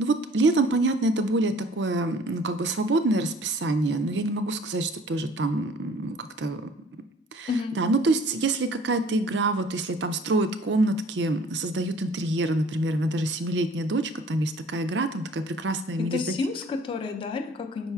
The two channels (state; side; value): normal; both; correlation 0.53